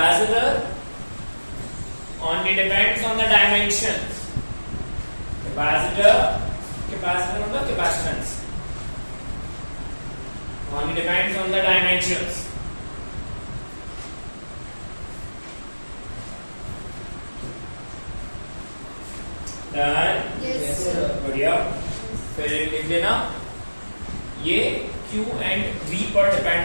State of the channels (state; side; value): inverted; both; correlation -1.00